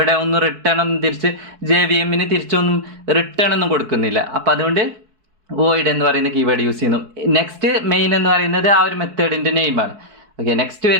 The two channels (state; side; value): late; left; 4.6 ms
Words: ഒന്നും റിട്ടേൺ ഒന്നും തിരിച്ച് JVM തിരിച്ചൊന്നും റിട്ടേൺ ഒന്നും കൊടുക്കുന്നില്ല. അപ്പോൾ അതുകൊണ്ട് വോയിഡ് എന്ന് പറയുന്ന കീവേഡ് യൂസ് ചെയ്യുന്നു. നെക്സ്റ്റ് മെയിൻ എന്ന് പറയുന്നത് ആ ഒരു മെത്തേഡിൻ്റെ നെയിമാണ്. ഓക്കെ, നെക്സ്റ്റ്